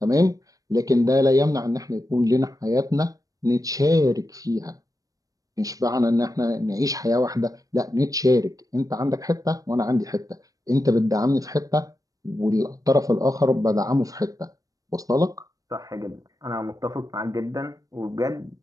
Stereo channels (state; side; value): late; left; 0.17 ms